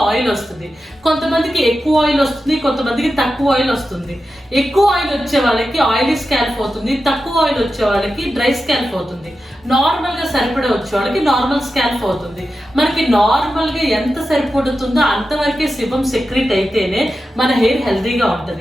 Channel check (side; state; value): both; normal; correlation 0.91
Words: ఆయిల్ వస్తుంది. కొంతమందికి ఎక్కువ ఆయిల్ వస్తుంది, కొంతమందికి తక్కువ ఆయిల్ వస్తుంది. ఎక్కువ ఆయిల్ వచ్చే వాళ్ళకి ఆయిలీ స్కాల్ప్ అవుతుంది, తక్కువ ఆయిల్ వచ్చే వాళ్ళకి డ్రై స్కాల్ప్ అవుతుంది. నార్మల్గా సరిపడా వచ్చే వాళ్ళకి నార్మల్ స్కాల్ప్ అవుతుంది. మనకి నార్మల్గా ఎంత సరిపడుతుందో అంతవరకే సిబం సెక్రెట్ అయితేనే మన హెయిర్ హెల్తీగా